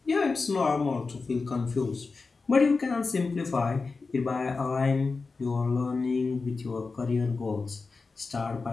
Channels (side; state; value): right; quieter; 4.2 dB